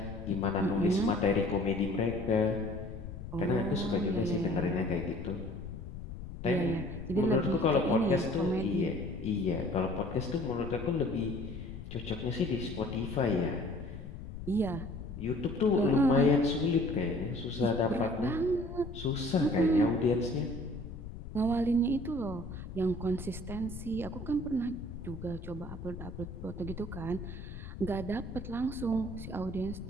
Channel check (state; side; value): noise; left; rumble, 10 dB below the sound